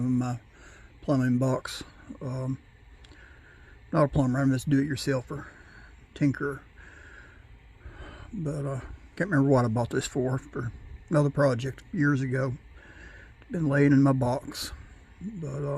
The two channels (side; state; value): both; identical; correlation 1.00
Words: my plumbing box. Not a plumber, I'm just do-it-yourselfer, tinkerer. But can't remember what I bought this for another project years ago. It's been laying in my box.